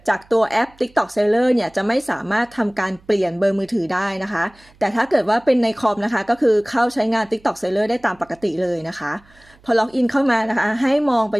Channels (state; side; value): noise; right; hum, 29 dB below the sound